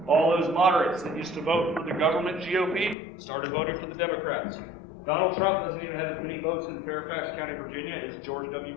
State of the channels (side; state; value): right; drops out; at 3.0 s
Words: All those moderates that used to vote for the government GOP started voting for the Democrats. Donald Trump doesn't even have as many votes in Fairfax County, Virginia as George W.